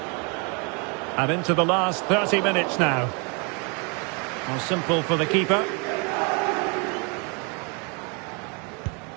And into the last 30 minutes now. Well, simple for the keeper.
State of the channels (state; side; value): quieter; left; 33.1 dB